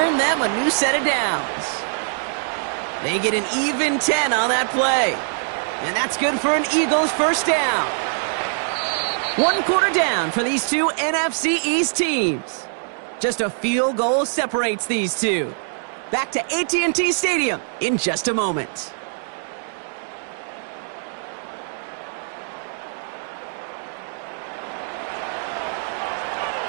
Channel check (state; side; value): silent; left; digital silence